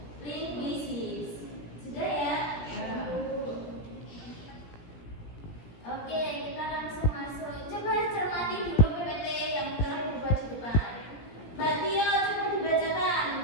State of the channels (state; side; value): late; right; 17 ms